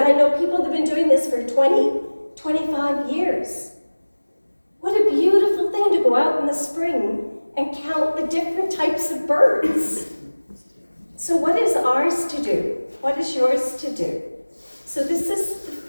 know people that have been doing this for 20, 25 years. What a beautiful thing to go out in the spring and count the different types of birds. So what is ours to do? What is yours to do? So this is the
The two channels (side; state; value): both; inverted; correlation -1.00